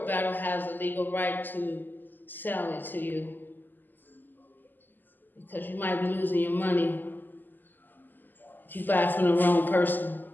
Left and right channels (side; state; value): right; late; 0.088 ms